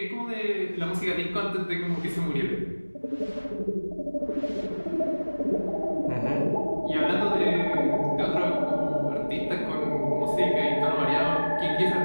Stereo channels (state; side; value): inverted; both; correlation -1.00